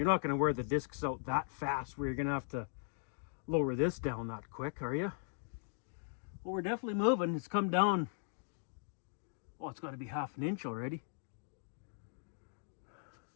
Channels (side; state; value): right; silent; digital silence